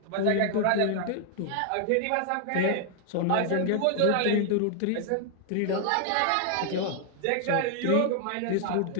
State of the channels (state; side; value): different; both; correlation 0.00